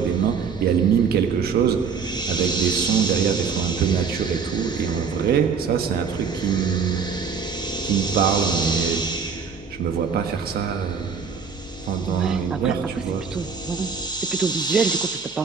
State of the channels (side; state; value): left; quieter; 5.9 dB